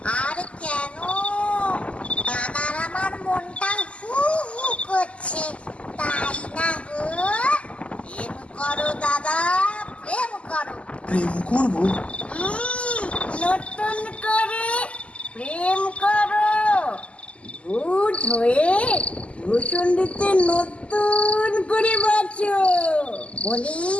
আর কেন? দাদার আমার মনটা হু হু করছে, তাই না গো? প্রেম করো দাদা, প্রেম করো। প্রেম করবো? নতুন করে প্রেম করো। ভূত হয়ে ভূষণ্ডিতে নতুন করে বাঁচো। বলি,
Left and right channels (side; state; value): right; late; 0.058 ms